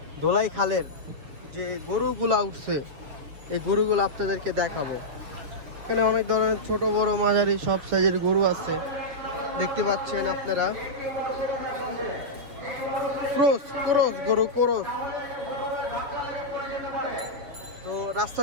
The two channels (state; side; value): late; left; 6.8 ms